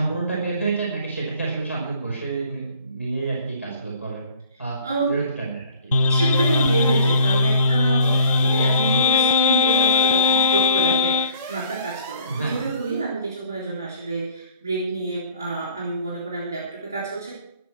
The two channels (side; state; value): both; inverted; correlation -0.55